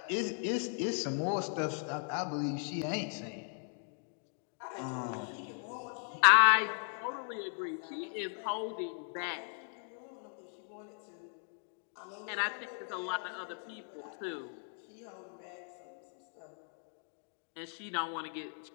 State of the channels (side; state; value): right; silent; 53 dB below the other